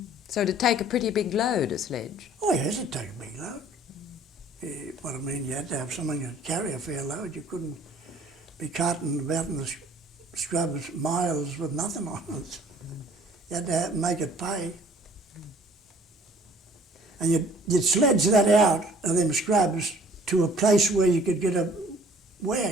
So it'd take a pretty big load, a sledge. Oh yes, it'd take a big load. What I mean, you had to have something to carry a fair load. You couldn't be carting about in the scrubs miles with nothing on it. You had to make it pay. And you'd sledge that out of them scrubs to a place where you could get a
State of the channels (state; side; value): normal; both; correlation 0.54